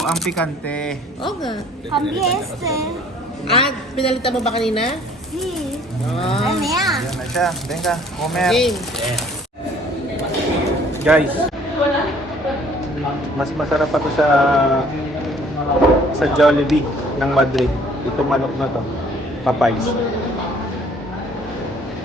ang pikante. Oo nga. Cambié este. Ah, pinalitan mo ba kanina? Sí. Ah. Ay, mira. Yan na siya. Venga, comer. Game. Guys, mas masarap pa to sa Jollibee ng Madrid. Itong manok na to, Popeyes.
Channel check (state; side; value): normal; both; correlation 0.56